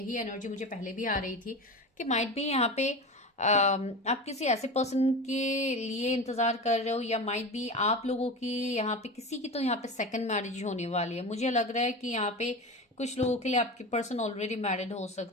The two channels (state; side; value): normal; both; correlation 0.27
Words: एनर्जी मुझे पहले भी आ रही थी कि माइट भी यहाँ पे आप किसी ऐसे पर्सन के लिए इंतजार कर रहे हो, या माइट भी आप लोगों की यहाँ पे किसी की तो यहाँ पे सेकंड मैरिज होने वाली है। मुझे लग रहा है कि यहाँ पे कुछ लोगों के लिए आपके पर्सन ऑलरेडी मैरिड हो